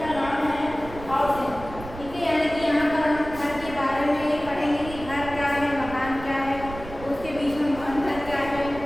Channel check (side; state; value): right; noise; rumble, 13 dB below the sound